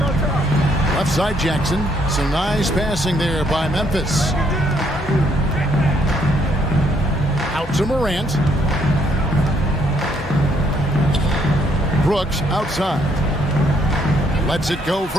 Left side Jackson. Some nice passing there by Memphis. Out to Morant. Brooks outside. Lets it go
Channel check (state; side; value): normal; both; correlation 0.70